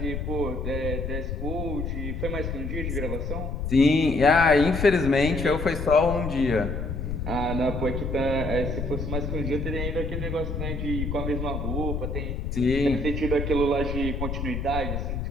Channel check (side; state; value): left; noise; rumble, 3 dB below the sound